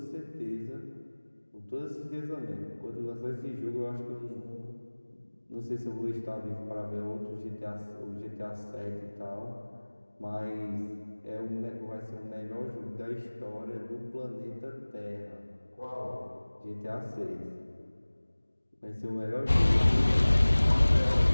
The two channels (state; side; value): inverted; both; correlation -1.00